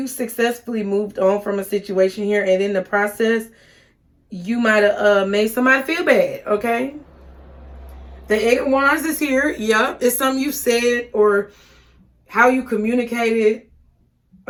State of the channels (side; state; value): both; identical; correlation 1.00